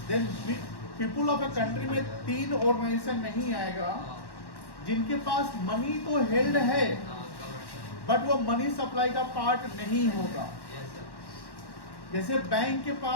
then people of a country में तीन ऑर्गेनाइजेशन नहीं आएगा जिनके पास money तो हेल्ड है बट वो मनी सप्लाई का पार्ट नहीं होगा। जैसे बैंक के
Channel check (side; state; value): right; late; 1.1 ms